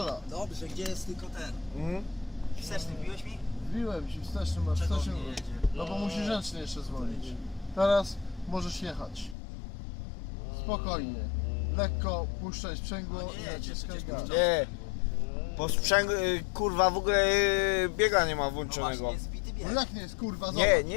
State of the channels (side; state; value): right; drops out; at 9.3 s